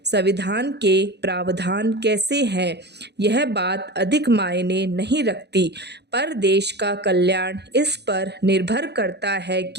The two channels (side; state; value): left; late; 0.49 ms